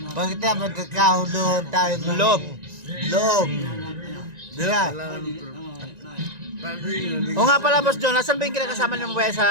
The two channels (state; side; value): late; left; 1.9 ms